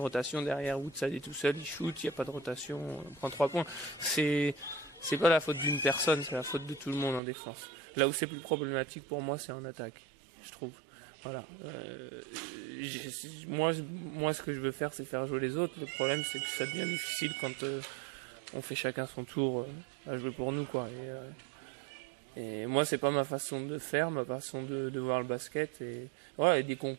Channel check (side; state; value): left; drops out; at 7.2 s